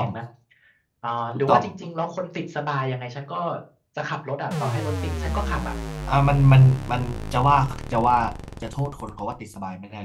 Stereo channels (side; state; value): both; identical; correlation 1.00